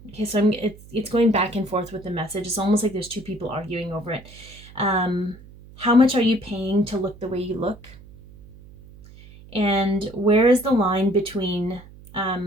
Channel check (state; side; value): noise; right; hum, 20 dB below the sound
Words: Okay, so it's going back and forth with the message. It's almost like there's 2 people arguing over it. How much are you paying to look the way you look? And where is the line between